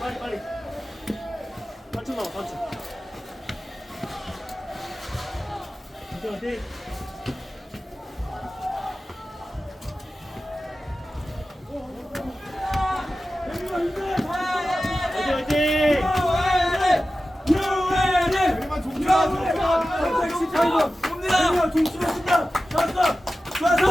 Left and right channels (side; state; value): both; normal; correlation 0.94